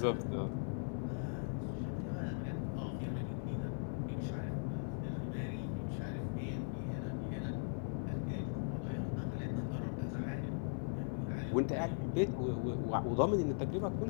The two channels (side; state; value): right; silent; 52 dB below the other